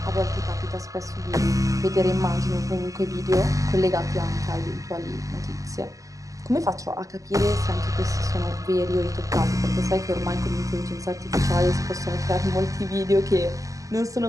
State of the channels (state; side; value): late; left; 0.16 ms